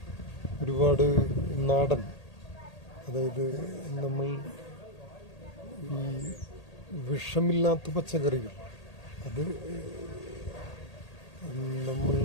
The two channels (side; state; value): right; late; 1.8 ms